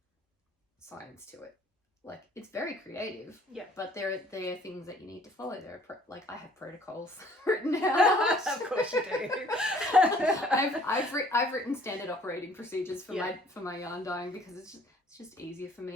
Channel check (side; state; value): both; normal; correlation 0.56